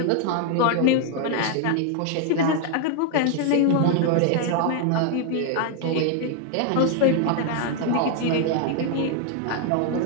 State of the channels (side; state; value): both; different; correlation 0.00